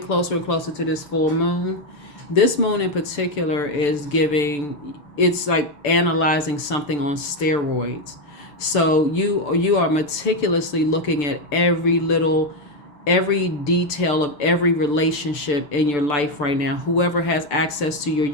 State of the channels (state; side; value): late; right; 6.8 ms